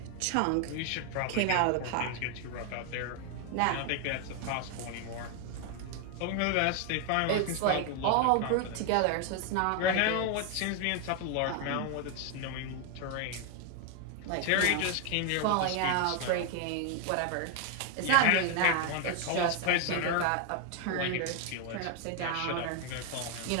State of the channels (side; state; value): both; different; correlation 0.01